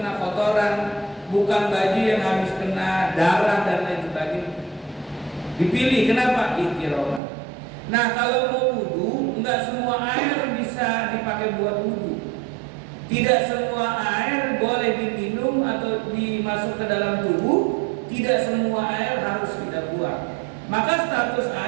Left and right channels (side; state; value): left; drops out; at 7.2 s